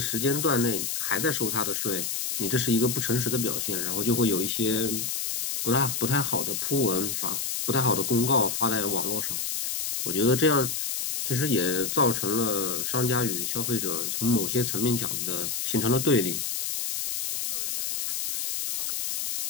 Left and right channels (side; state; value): left; noise; hiss, 2 dB below the sound